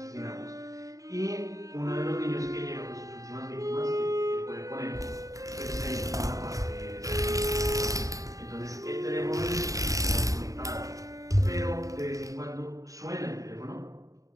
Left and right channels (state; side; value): late; left; 0.16 ms